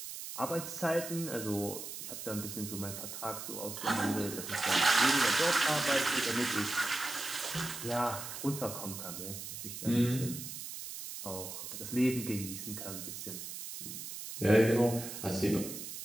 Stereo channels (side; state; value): right; noise; hiss, 8 dB below the sound